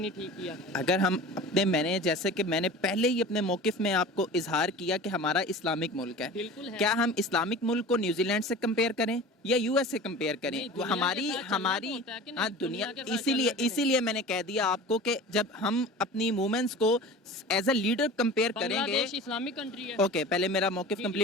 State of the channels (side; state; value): both; normal; correlation 0.37